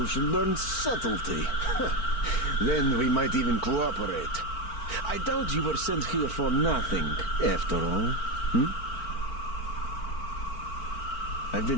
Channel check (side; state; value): right; late; 4.4 ms